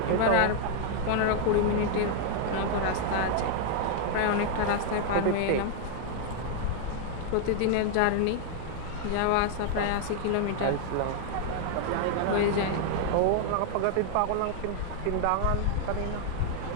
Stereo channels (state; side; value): different; both; correlation 0.00